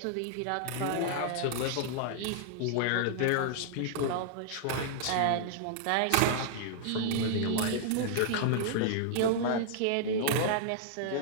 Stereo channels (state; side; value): different; both; correlation -0.01